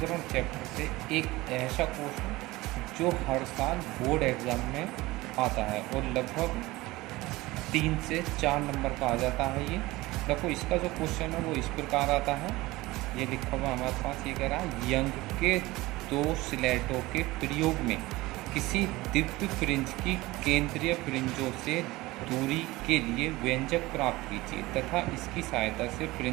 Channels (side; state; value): left; quieter; 19.8 dB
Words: चैप्टर से एक ऐसा क्वेश्चन जो हर साल बोर्ड एग्ज़ाम में आता है और लगभग 3 से 4 नंबर का आ जाता है। ये देखो, इसका जो क्वेश्चन है वो इस प्रकार आता है। ये लिखा हुआ हमारे पास, ये कह रहा है यंग के 2 स्लेटों के प्रयोग में किसी दिव्य फ्रिंज की केंद्रीय फ्रिंजों से दूरी के लिए व्यंजक प्राप्त कीजिए तथा इसकी सहायता से